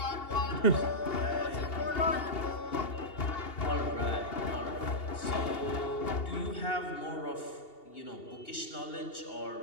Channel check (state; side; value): late; right; 2.8 ms